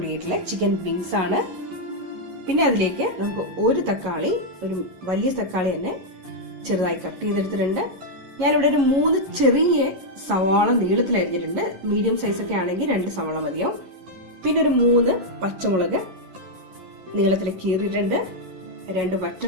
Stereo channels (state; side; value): late; left; 11 ms